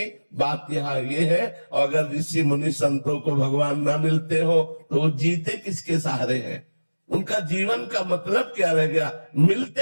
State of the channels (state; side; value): inverted; both; correlation -1.00